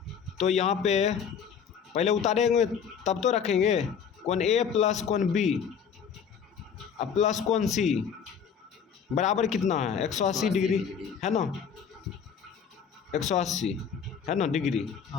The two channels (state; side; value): quieter; right; 7.2 dB